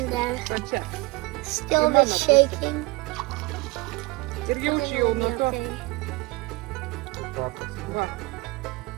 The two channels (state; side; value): quieter; left; 23.2 dB